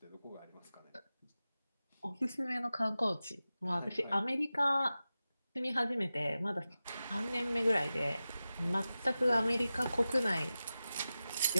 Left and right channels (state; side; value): inverted; both; correlation -0.94